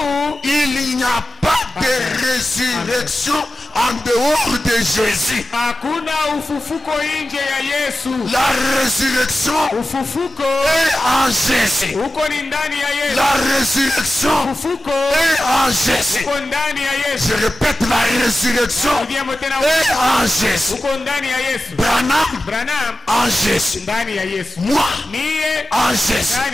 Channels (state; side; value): normal; both; correlation 0.94